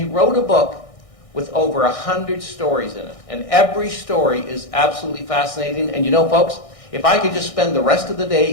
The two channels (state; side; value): late; right; 1.6 ms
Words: wrote a book with over 100 stories in it. And every story is absolutely fascinating. And you know, folks, if I could just spend the rest of the day